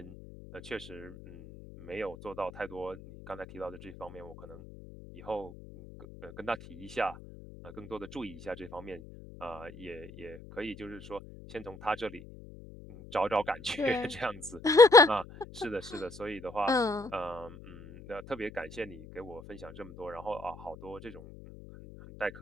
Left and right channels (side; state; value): left; noise; hum, 16 dB below the sound